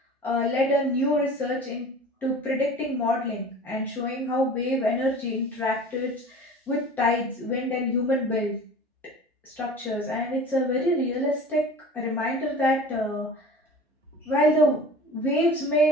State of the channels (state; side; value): normal; both; correlation 0.41